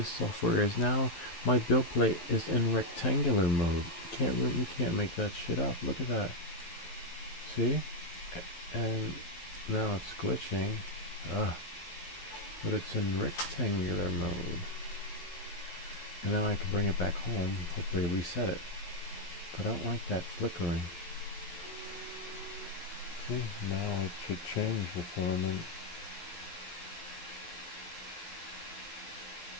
software is now, my build plate is in rectangular mode. You can't make that shit up. Look at that. See, and now it's glitching. But it's in rectangular mode. And now I can bring it back home. Hopefully reset it. But I don't like that flickering. See, now it should change the filament.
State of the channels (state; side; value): late; right; 11 ms